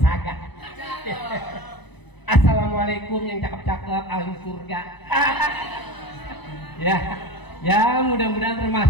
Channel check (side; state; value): right; late; 1.0 ms